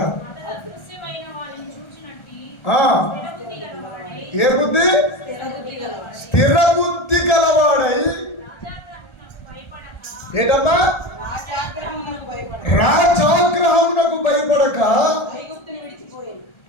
ఏ బుద్ధి? స్థిర బుద్ధి గలవాడై ఏంటమ్మా? రాజాగ్రహమునకు భయపడక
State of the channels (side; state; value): right; late; 1.4 ms